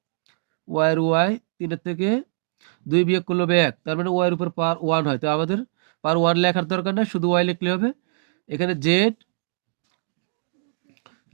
y এর y, 3 এর থেকে 2 বিয়োগ করলে হবে 1, তার মানে y এর উপর পাওয়ার 1 হয়, তো আমাদের পাওয়ার 1 লেখার দরকার না, শুধু y লিখলে হবে। এখানে z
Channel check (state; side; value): silent; left; digital silence